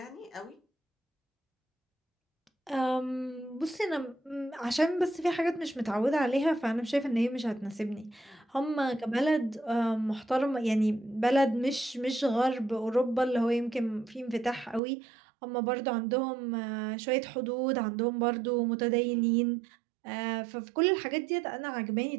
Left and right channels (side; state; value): left; drops out; at 14.8 s